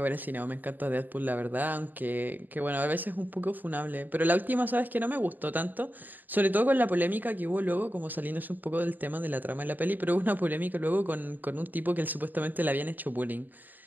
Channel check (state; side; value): late; left; 0.087 ms